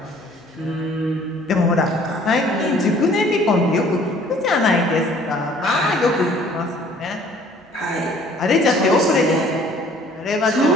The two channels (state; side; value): normal; both; correlation 0.55